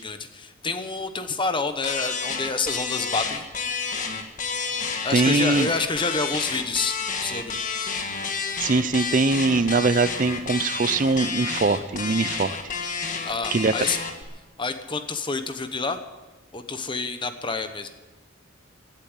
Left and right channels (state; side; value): normal; both; correlation 0.28